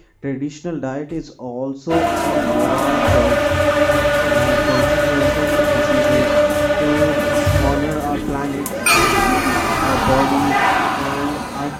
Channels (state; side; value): identical; both; correlation 1.00